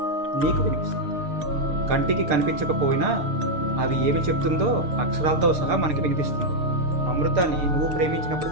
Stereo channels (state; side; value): late; left; 6.6 ms